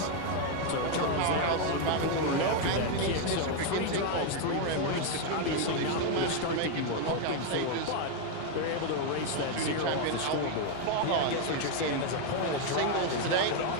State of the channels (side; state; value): both; different; correlation 0.01